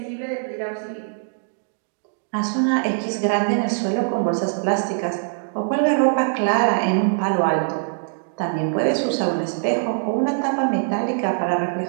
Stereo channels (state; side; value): silent; left; digital silence